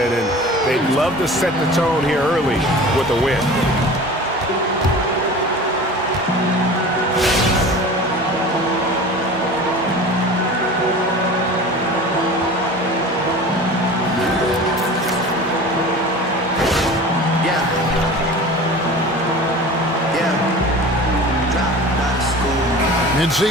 and they'd love to set the tone here early with a win.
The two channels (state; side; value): normal; both; correlation 0.38